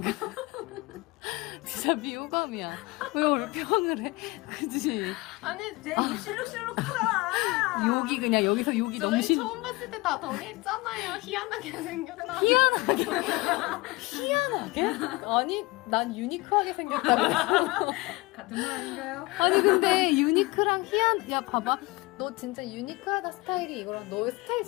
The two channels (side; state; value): right; quieter; 23.0 dB